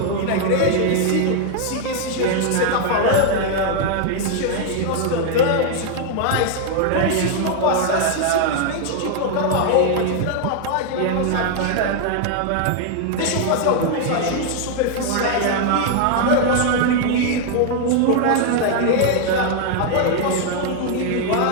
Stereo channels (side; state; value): both; different; correlation 0.00